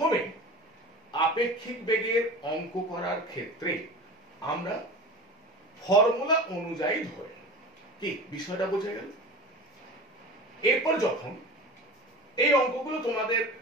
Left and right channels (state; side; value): normal; both; correlation 0.34